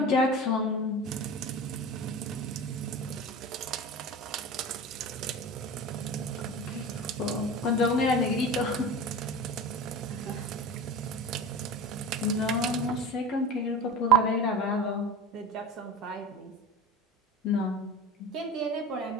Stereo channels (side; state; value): both; normal; correlation 0.32